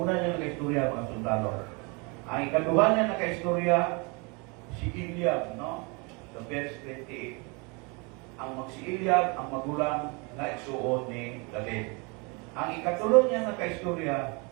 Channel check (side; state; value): left; quieter; 30.3 dB